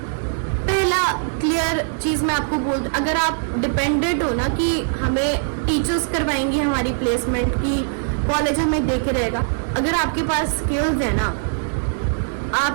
पहला क्लियर चीज़ मैं आपको बोल, अगर आप डिपेंडेंट हो ना कि हमें टीचर्स करवाएंगे हमारी प्लेसमेंट की, कॉलेज हमें देखे रहेगा, अगर आपके पास स्किल्स है ना,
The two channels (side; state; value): left; silent; 63 dB below the other